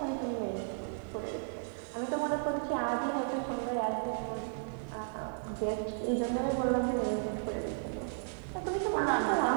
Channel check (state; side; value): silent; left; 55 dB below the other